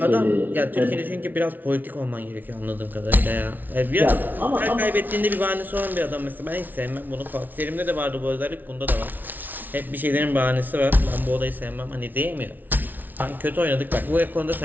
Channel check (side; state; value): left; late; 0.084 ms